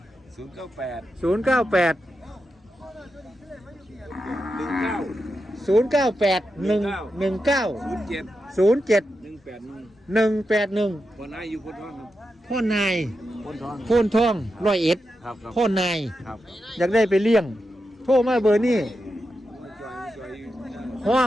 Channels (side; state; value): both; normal; correlation 0.88